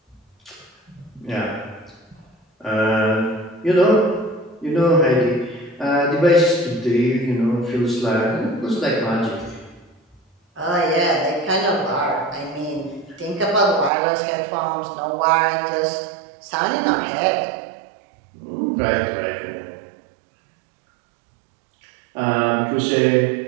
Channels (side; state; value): left; drops out; at 13.9 s